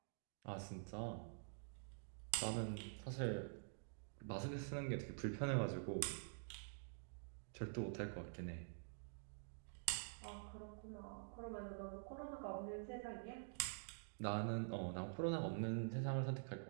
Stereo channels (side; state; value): left; silent; digital silence